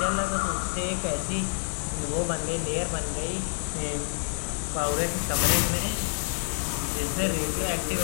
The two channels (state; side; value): silent; right; digital silence